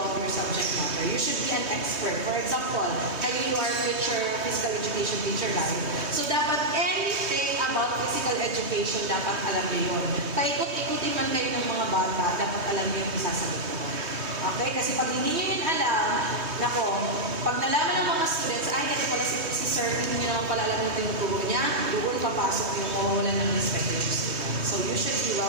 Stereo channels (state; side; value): late; left; 3.2 ms